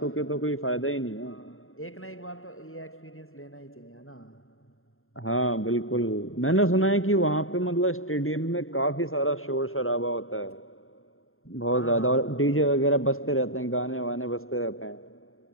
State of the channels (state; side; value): late; right; 0.61 ms